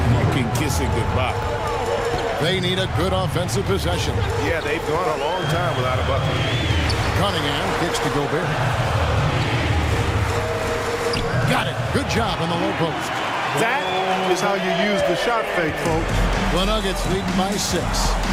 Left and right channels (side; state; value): both; identical; correlation 1.00